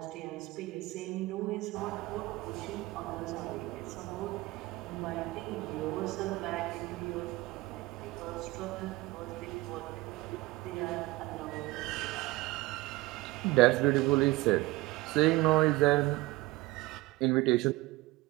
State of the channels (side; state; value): left; quieter; 20.2 dB